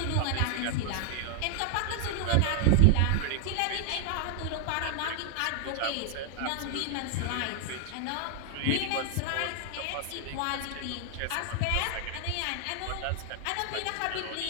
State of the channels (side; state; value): both; different; correlation -0.01